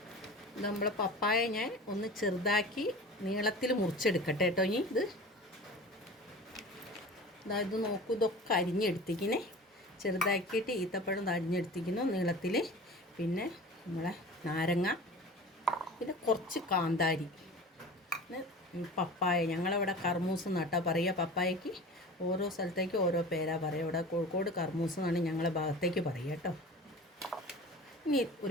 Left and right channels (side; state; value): both; normal; correlation 0.38